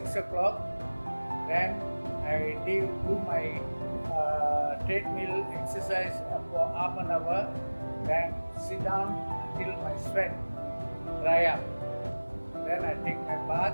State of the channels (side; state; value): both; inverted; correlation -1.00